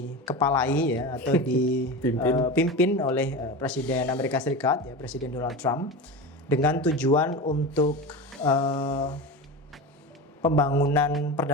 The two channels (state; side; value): normal; both; correlation 0.25